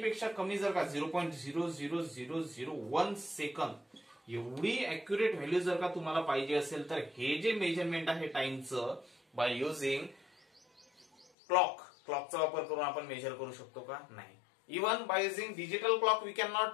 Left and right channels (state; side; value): drops out; right; at 11.2 s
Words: कमी जर का 0.00001 सेकंद एवढी अॅक्युरेट व्हॅल्यू जर का तुम्हाला पाहिजे असेल तर हे जे मेजरमेंट आहे टाइमचं बाय युझिंग क्लॉकचा वापर करून आपण मेजर करू शकतो का? नाही. Even by using digital clock we can